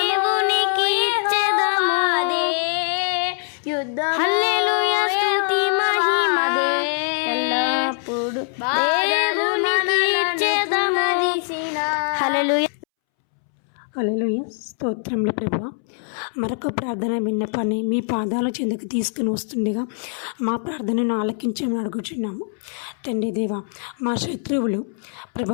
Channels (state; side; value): silent; right; 64 dB below the other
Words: ఇచ్చెదము. హల్లెలూయా, స్తుతి మహిమ ఎల్లప్పుడు దేవునికి ఇచ్చెదము. హల్లెలూయా. హల్లెలూయా. స్తోత్రములు ప్రభువా. మరొక ప్రార్థన విన్నపాన్ని మీ పాదాల చెందుకు తీసుకుని వస్తుండగా మా ప్రార్థనను ఆలకించమని అడుగుచున్నాము. తండ్రి దేవా, మా శత్రువులు